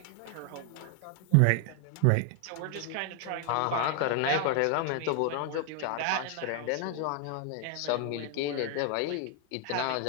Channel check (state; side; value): different; both; correlation 0.00